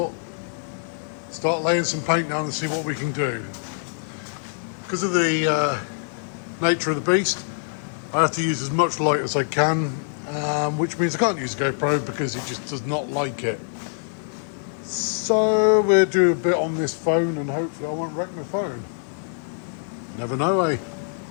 start laying some paint down and see what we can do. Because of the nature of the beast, I have to use as much light as I can, which means I can't use a GoPro because it just does not like it. So we'll do a bit on this phone and hopefully I won't wreck my phone. Never know, eh?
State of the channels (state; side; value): silent; right; digital silence